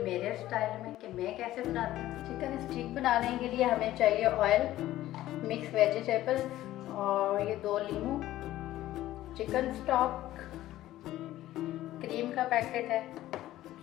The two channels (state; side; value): quieter; right; 14.6 dB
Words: मेरे स्टाइल में कि मैं कैसे बनाती हूँ। चिकन स्टीक बनाने के लिए हमें चाहिए ऑयल, मिक्स वेजिटेबल्स और ये 2 लीमू, चिकन स्टॉक, क्रीम का पैकेट है